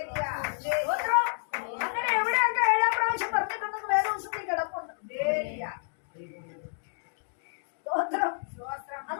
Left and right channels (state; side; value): silent; right; digital silence